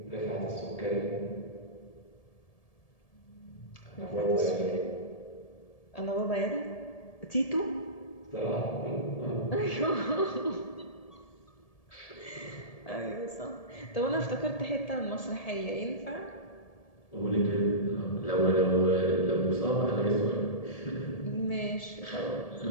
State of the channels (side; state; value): right; late; 1.7 ms